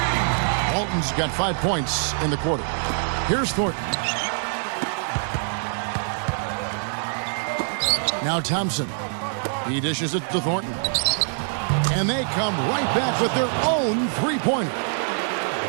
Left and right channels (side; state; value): left; silent; 62 dB below the other